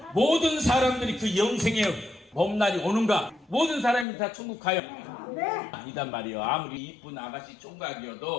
모든 사람들이 그 영생의 봄날이 오는가? 모든 사람이 다 천국 가요? 아니단 말이에요. 아무리 이쁜 아가씨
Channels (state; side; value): drops out; right; at 4.0 s